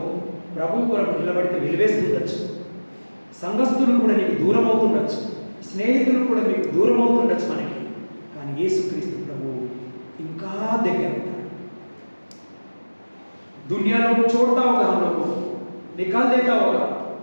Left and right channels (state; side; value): inverted; both; correlation -1.00